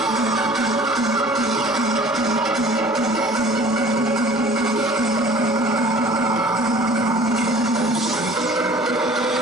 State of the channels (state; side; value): normal; both; correlation 0.48